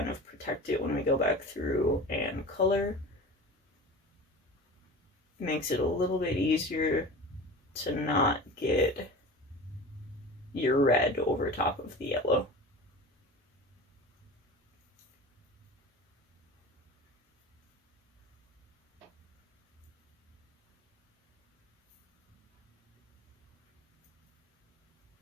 of protect it when we go back through and color. Makes it a little bit easier to not get your red over top of the yellow.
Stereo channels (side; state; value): both; normal; correlation 0.34